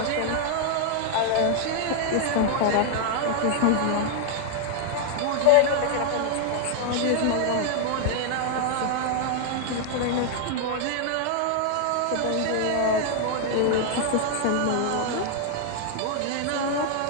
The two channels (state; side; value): different; both; correlation 0.00